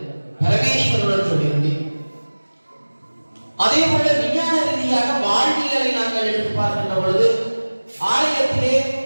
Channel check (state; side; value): inverted; both; correlation -1.00